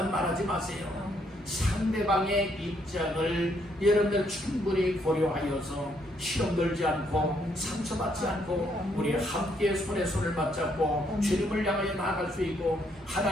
말하지 마세요. 상대방의 입장을 여러분들 충분히 고려하여서 시험 들지 않고 상처받지 않고 우리 함께 손에 손을 맞잡고 주님을 향하여 나아갈 수 있고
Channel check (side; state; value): both; normal; correlation 0.72